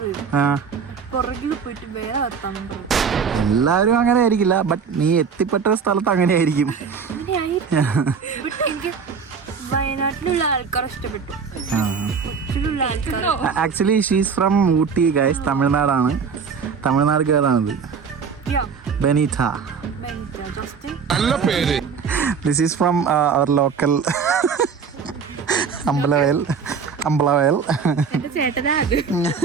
പുറകിൽ പോയിട്ട് വേറെ വർത്താനം പറയും. എല്ലാവരും അങ്ങനെ ആയിരിക്കില്ല, ബട്ട് നീ എത്തിപ്പെട്ട സ്ഥലത്ത് അങ്ങനെ ആയിരിക്കും. എനിക്ക് വയനാട്ടിലുള്ള ആൾക്കാർ ഇഷ്ടപ്പെട്ടു. കൊച്ചിയിലുള്ള ആൾക്കാർ actually she's from Ooty guys. തമിഴ്നാടാണ്, Tamil Nadu ഗേളാണിത്. Benita. நல்ல பேரு. This is from our local Ambalavayal. എന്റെ ചേട്ടനാ അത്.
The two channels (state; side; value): quieter; left; 6.0 dB